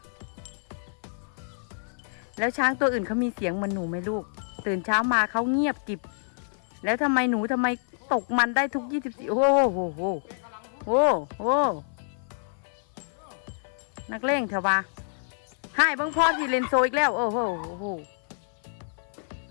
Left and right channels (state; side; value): silent; right; 56 dB below the other